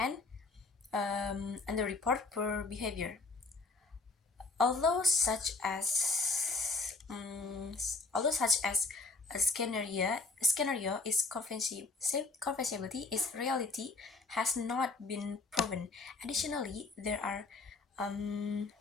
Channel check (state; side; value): quieter; right; 3.7 dB